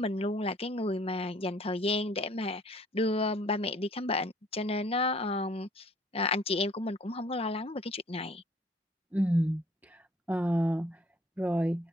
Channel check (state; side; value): normal; both; correlation 0.57